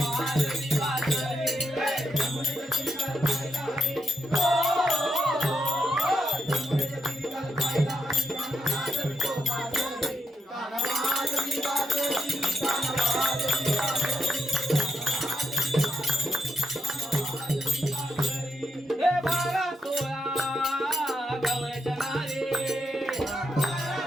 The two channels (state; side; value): normal; both; correlation 0.80